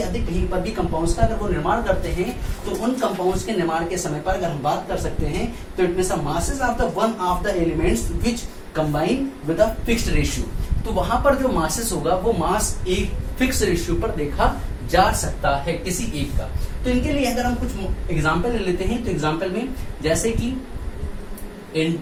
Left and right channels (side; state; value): both; identical; correlation 1.00